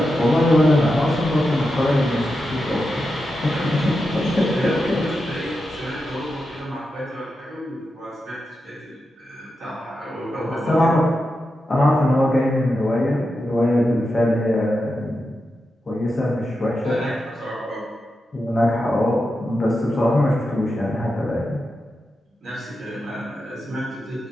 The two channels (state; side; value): normal; both; correlation 0.88